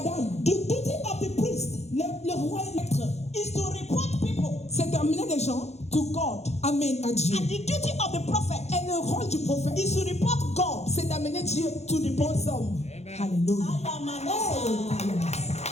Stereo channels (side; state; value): right; late; 0.31 ms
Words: the duty of the priest le roi et maître, is to report people c'est d'amener les gens, to God. amen, à Dieu. And the duty of the prophet Et le rôle du prophète, is to report God. c'est d'amener Dieu to the bons hommes. Alléluia. I am an